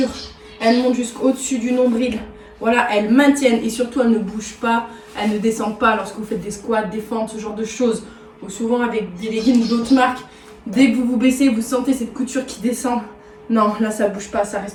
elles montent jusqu'au-dessus du nombril. Voilà, elles maintiennent et surtout elles ne bougent pas. Elles ne descendent pas lorsque vous faites des squats, des fentes, ce genre de choses. Ou souvent avec des leggings d'autres marques, dès que vous vous baissez, vous sentez cette couture qui descend. Non, là ça bouge pas, ça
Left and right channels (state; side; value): identical; both; correlation 1.00